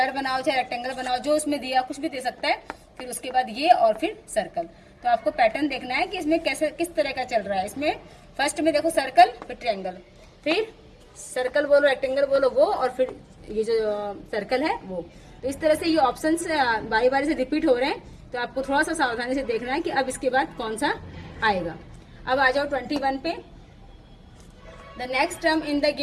बनाओ चाहे रेक्टेंगल बनाओ, जो उसमें दिया कुछ भी दे सकता है, फिर उसके बाद ये और फिर सर्कल। तो आपको पैटर्न देखना है कि इसमें कैसे किस तरह का चल रहा है। इसमें फर्स्ट में देखो सर्कल, फिर ट्रायंगल, फिर सर्कल बोलो रेक्टेंगल बोलो वो, और फिर ये जो सर्कल है वो। तो इस तरह से ये ऑप्शंस बारी बारी से रिपीट हो रहे हैं, तो आपको थोड़ा सा सावधानी से देखना है कि अब इसके बाद कौन सा आएगा। अब आ जाओ 21 पे। The next term in the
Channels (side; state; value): both; identical; correlation 1.00